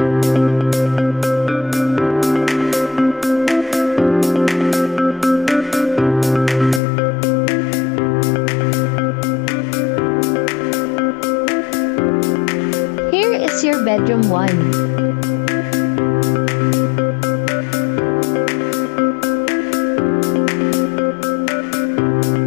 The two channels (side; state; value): right; drops out; at 6.8 s